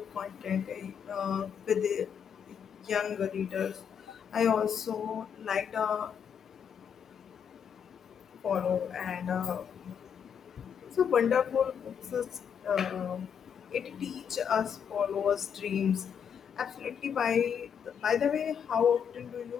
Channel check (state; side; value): quieter; right; 7.6 dB